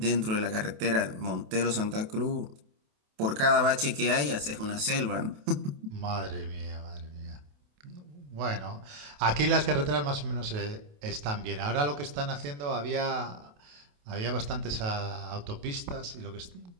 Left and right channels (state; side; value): late; left; 28 ms